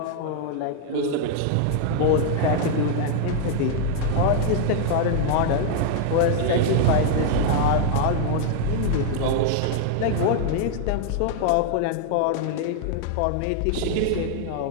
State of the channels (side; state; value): both; different; correlation 0.00